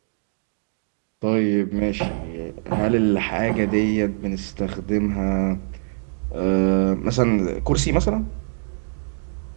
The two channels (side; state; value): left; silent; digital silence